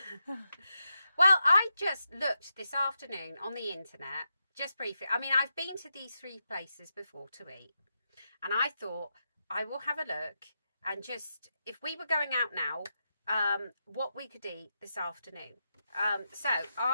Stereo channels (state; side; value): inverted; both; correlation -0.86